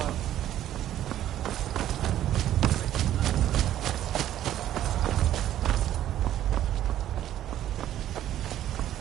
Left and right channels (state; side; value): quieter; left; 12.1 dB